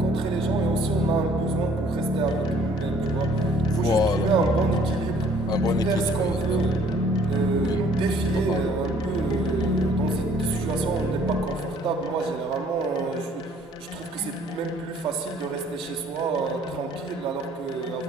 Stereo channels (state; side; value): normal; both; correlation 0.58